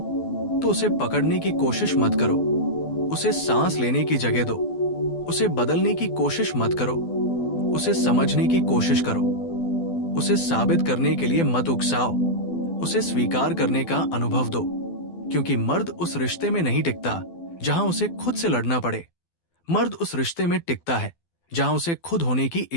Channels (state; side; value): late; right; 12 ms